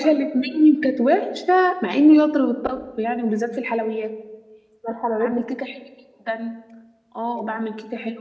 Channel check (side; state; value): both; identical; correlation 1.00